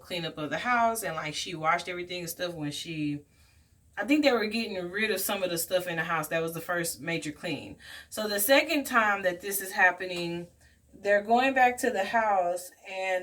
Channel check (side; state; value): both; identical; correlation 1.00